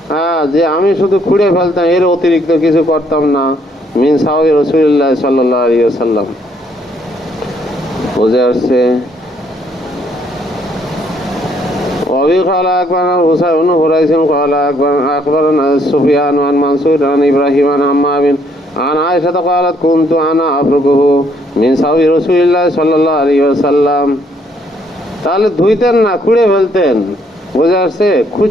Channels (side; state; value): both; normal; correlation 0.68